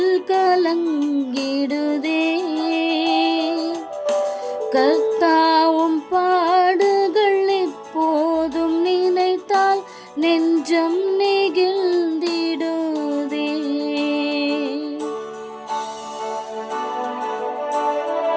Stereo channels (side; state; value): both; identical; correlation 1.00